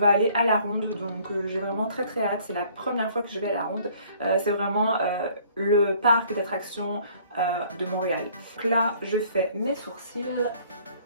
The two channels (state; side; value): inverted; both; correlation -0.57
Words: aller à la ronde, donc j'ai vraiment très hâte, c'est la première fois que je vais à la ronde, c'est vraiment le parc d'attractions de Montréal. Donc là je fais mes sourcils.